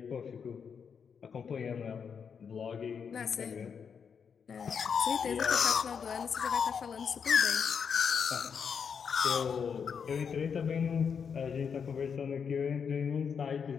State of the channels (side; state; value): right; quieter; 6.6 dB